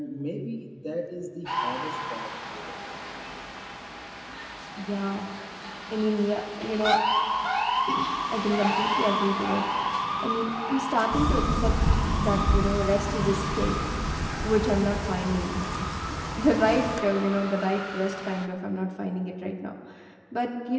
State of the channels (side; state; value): both; identical; correlation 1.00